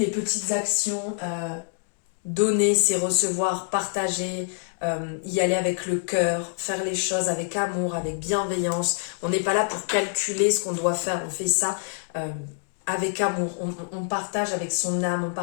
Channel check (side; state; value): right; silent; 59 dB below the other